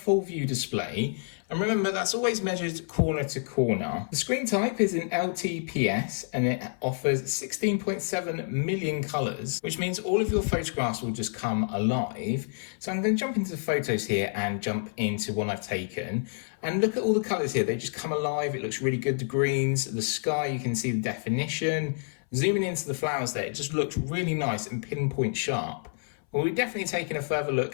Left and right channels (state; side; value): silent; right; 59 dB below the other